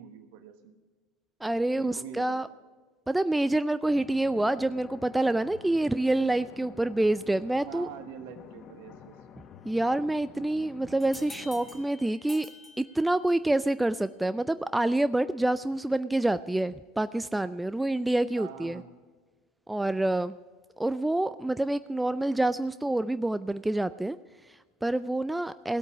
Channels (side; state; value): both; normal; correlation 0.97